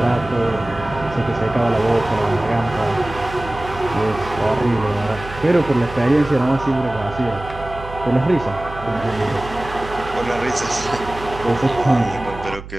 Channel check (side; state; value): right; noise; hum, 13 dB below the sound